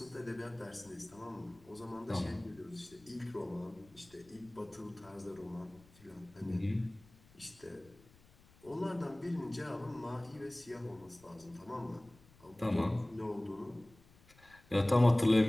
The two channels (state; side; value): noise; left; rumble, 26 dB below the sound